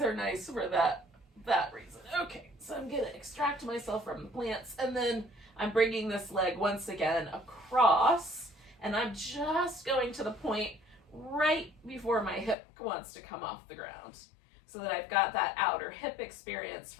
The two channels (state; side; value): drops out; right; at 12.6 s